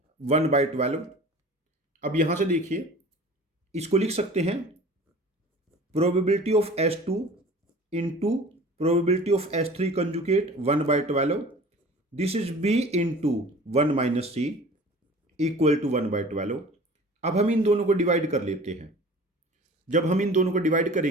1/12। अब यहां से देखिए, इसको लिख सकते हैं probability of S2 into probability of S3 conjugate 1/12. This is B into 1 minus C equal to 1/12। अब हम इन दोनों को डिवाइड कर लेते हैं। जब हम इन दोनों को डिवाइड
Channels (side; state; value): both; normal; correlation 0.43